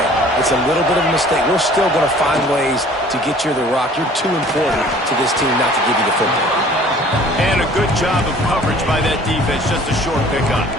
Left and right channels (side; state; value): both; normal; correlation 0.51